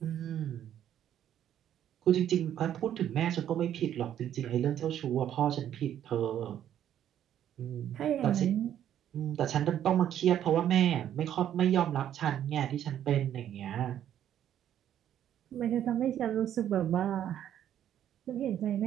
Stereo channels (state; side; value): quieter; left; 10.6 dB